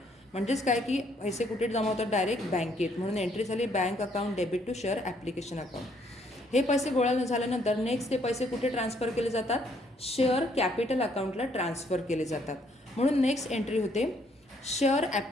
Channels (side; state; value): both; normal; correlation 0.68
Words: म्हणजेच काय की पैसे कुठे जमा होतात, डायरेक्ट बँकेत. म्हणून एंट्री झाली bank account debit to share application account. हे पैसे गोळा झाल्यानंतर नेक्स्ट ते पैसे कुठे ट्रान्सफर केले जातात, शेअर कॅपिटल अकाउंटला ट्रान्सफर केले जातात. म्हणून नेक्स्ट एंट्री होते share